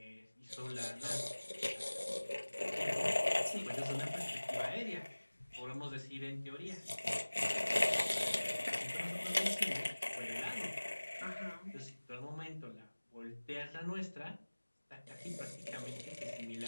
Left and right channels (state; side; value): inverted; both; correlation -1.00